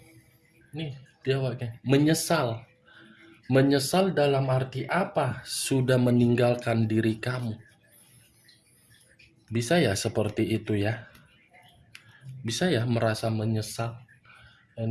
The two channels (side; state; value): both; identical; correlation 1.00